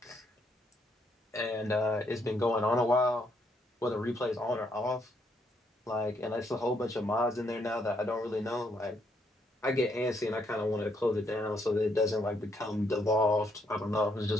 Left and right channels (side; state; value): both; normal; correlation 0.73